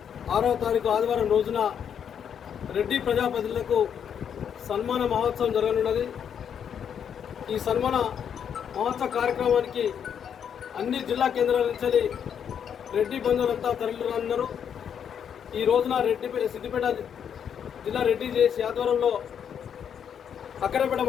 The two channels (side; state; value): right; quieter; 8.1 dB